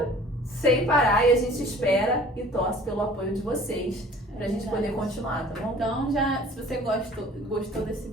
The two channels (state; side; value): normal; both; correlation 0.49